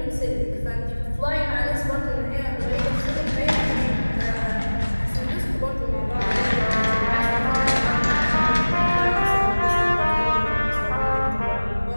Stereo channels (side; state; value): both; inverted; correlation -1.00